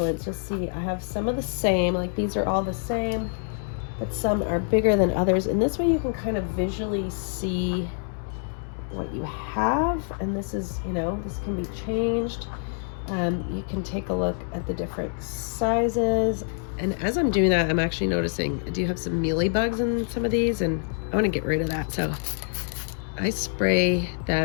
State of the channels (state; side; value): silent; right; 61 dB below the other